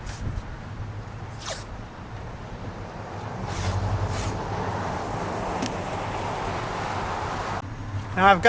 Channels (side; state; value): both; identical; correlation 1.00